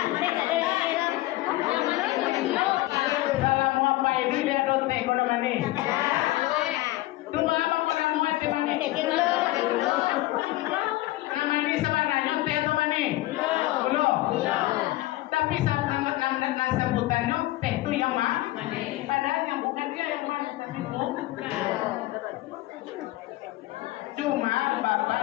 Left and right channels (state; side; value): quieter; right; 17.9 dB